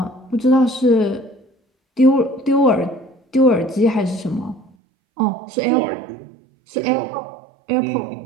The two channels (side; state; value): left; drops out; at 4.7 s